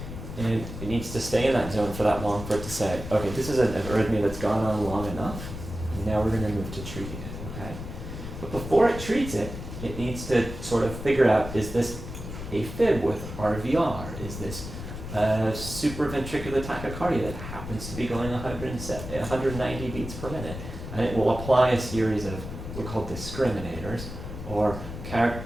And it needs to stay in that zone for that long for it to say, okay, this is an arrhythmia that's gone on long enough, and now we're going to move to treating it, okay? But before it treats it, it needs to sort of figure out, is this a fib with RVR? Is this supraventricular tachycardia that happens to be going 190 beats per minute? And it will apply a series of what are called discriminators, or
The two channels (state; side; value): noise; left; rumble, 9 dB below the sound